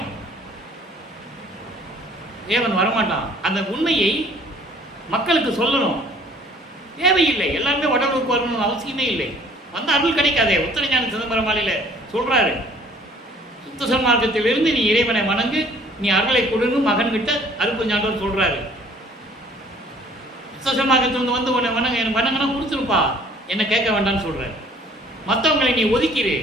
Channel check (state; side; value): normal; both; correlation 0.55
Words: இறைவன் வரமாட்டான். அந்த உண்மையை மக்களுக்கு சொல்லணும். தேவையில்லை, எல்லாருமே வடலூருக்கு வரணும்னு அவசியமே இல்லை. வந்த அருள் கிடைக்காதே. உத்தரஞான சிதம்பரம் மாலையில் சொல்றாரு, சுத்த சன்மார்க்கத்திலிருந்து நீ இறைவனை வணங்கு, நீ அருளை கொடுன்னு மகன்கிட்ட அருட்பெருஞ்சாண்டவர் சொல்றாரு. சுத்த சன்மார்க்கத்திலிருந்து வந்து உன்னை வணங்க, எனக்கு வணங்கினா கொடுத்துருப்பா, என்ன கேட்க வேண்டாம்னு சொல்றாரு. மற்றவங்களை நீ ஒதுக்கிடு,